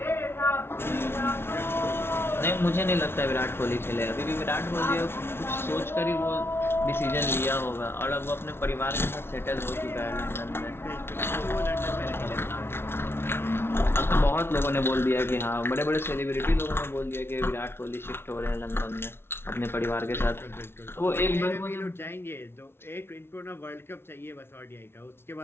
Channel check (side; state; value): right; late; 0.12 ms